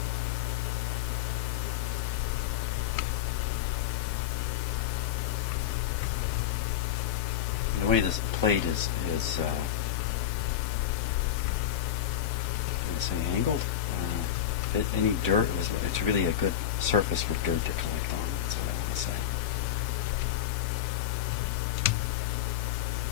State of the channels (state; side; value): quieter; right; 10.7 dB